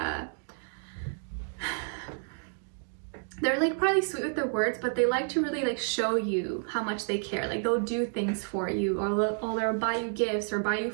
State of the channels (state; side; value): silent; left; 58 dB below the other